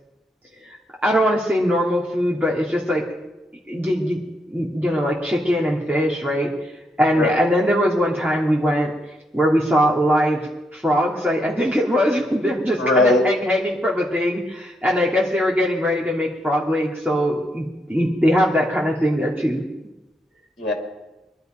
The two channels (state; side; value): normal; both; correlation 0.79